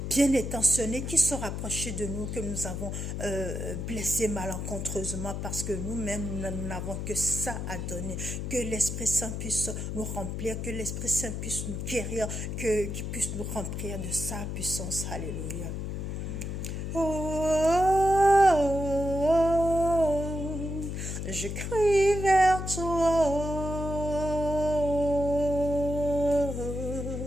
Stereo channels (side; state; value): left; noise; hum, 4 dB below the sound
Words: bien intentionnées qui se rapprochaient de nous, que nous avons blessées malencontreusement parce que nous-mêmes, nous n'avons que ça à donner. Que l'Esprit Saint puisse nous remplir, que l'Esprit Saint puisse nous guérir, qu'il puisse nous remplir de sa puissance. Alléluia. Je crie vers toi.